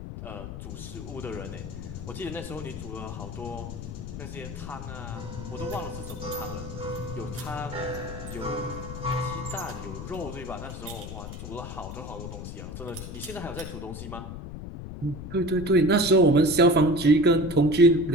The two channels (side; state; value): left; noise; rumble, 9 dB below the sound